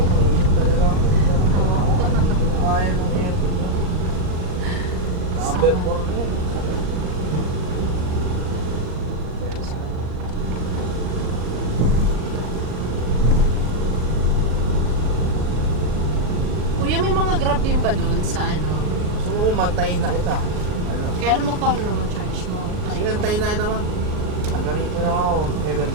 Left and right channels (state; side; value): late; left; 38 ms